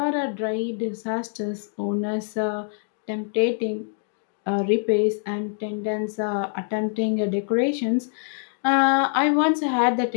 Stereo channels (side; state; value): right; silent; digital silence